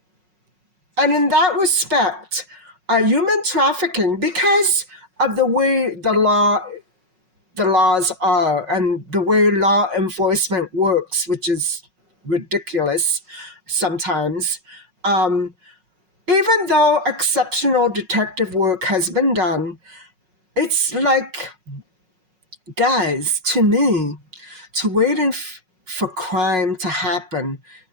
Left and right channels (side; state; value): left; late; 5.4 ms